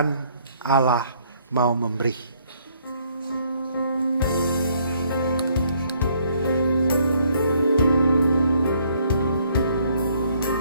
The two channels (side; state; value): both; inverted; correlation -0.65